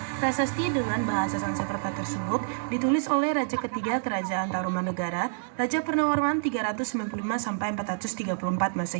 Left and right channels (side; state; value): left; silent; digital silence